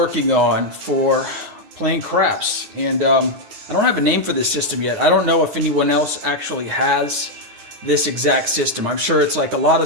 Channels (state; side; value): late; left; 9.5 ms